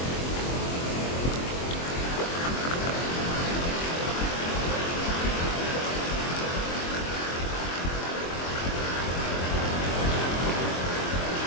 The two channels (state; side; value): late; right; 23 ms